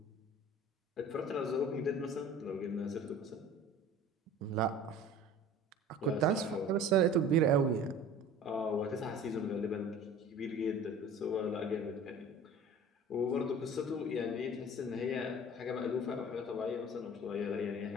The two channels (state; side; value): normal; both; correlation 0.43